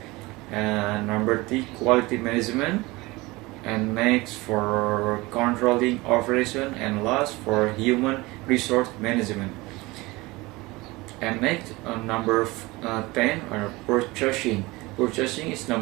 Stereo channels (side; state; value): left; quieter; 22.0 dB